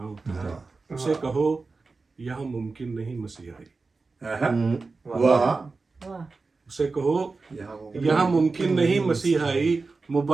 اترے. اسے کہو یہاں ممکن نہیں مسیحائی. واہ اسے کہو یہاں ممکن نہیں مسیحائی.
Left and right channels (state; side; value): quieter; left; 4.0 dB